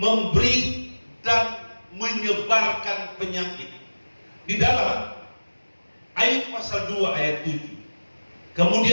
dan menyebarkan penyakit. Di dalam Ayub pasal 2 ayat 7.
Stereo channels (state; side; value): inverted; both; correlation -1.00